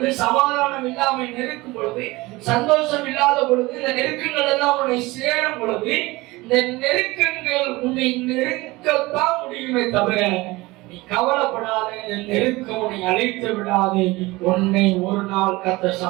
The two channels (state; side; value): quieter; left; 21.2 dB